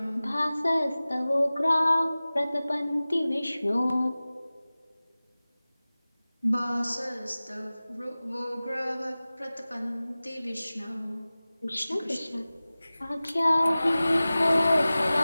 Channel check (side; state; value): both; inverted; correlation -0.98